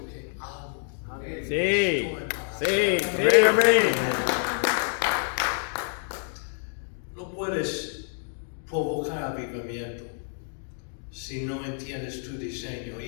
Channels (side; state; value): right; silent; 60 dB below the other